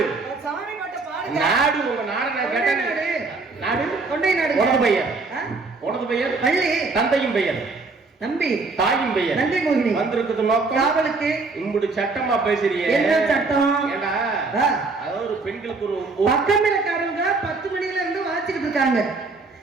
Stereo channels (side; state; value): left; quieter; 3.9 dB